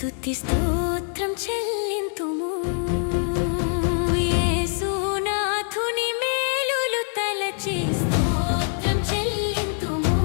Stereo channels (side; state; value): right; silent; 62 dB below the other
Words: స్తోత్రం చెల్లింతుము. యేసునాథుని మేలులు తలచి స్తోత్రం చెల్లింతుము,